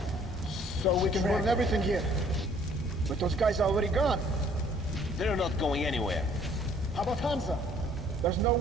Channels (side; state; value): both; normal; correlation 0.59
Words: So we can burn everything here. But those guys are already gone. They're not going anywhere. How about Hansa? There's no